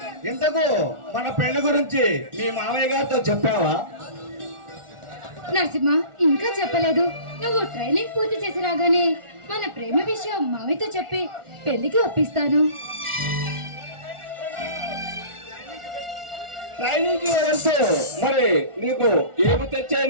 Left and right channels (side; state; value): left; late; 1.4 ms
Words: ఇంతకు మన పెళ్లి గురించి మీ మామయ్య గారితో చెప్పావా? నరసింహ, ఇంకా చెప్పలేదు. నువ్వు ట్రైనింగ్ పూర్తి చేసి రాగానే మన ప్రేమ విషయం మావితో చెప్పి పెళ్లికి ఒప్పిస్తాను. ట్రైనింగ్ కి వెళ్తూ మరి నీకు ఏమి